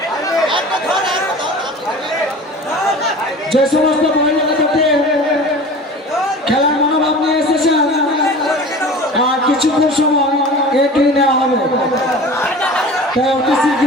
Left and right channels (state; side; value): normal; both; correlation 0.39